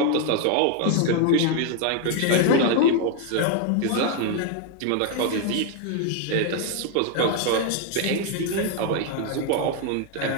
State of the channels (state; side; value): different; both; correlation 0.01